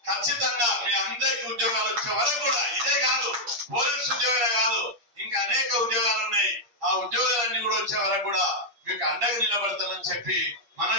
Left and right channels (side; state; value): left; late; 8.5 ms